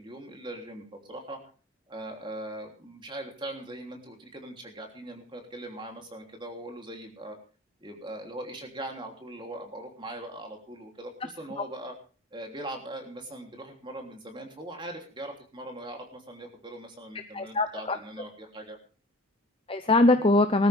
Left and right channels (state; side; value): normal; both; correlation 0.47